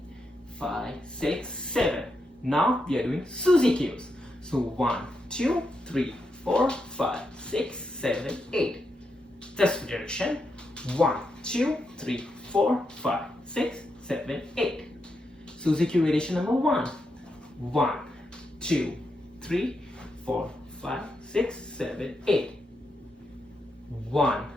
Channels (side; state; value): both; normal; correlation 0.84